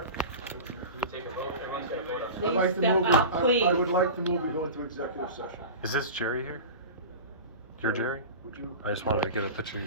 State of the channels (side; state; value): both; inverted; correlation -0.31